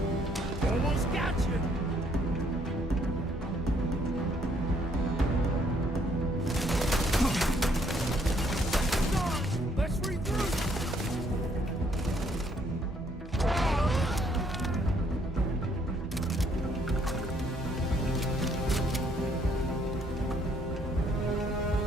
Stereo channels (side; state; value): both; normal; correlation 0.67